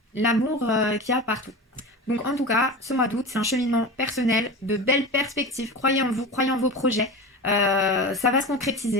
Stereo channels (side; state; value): both; normal; correlation 0.29